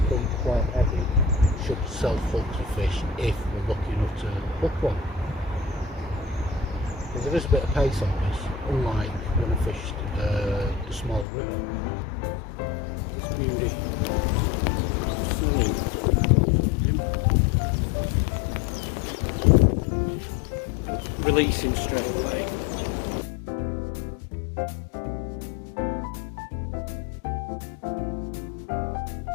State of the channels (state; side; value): drops out; right; at 11.2 s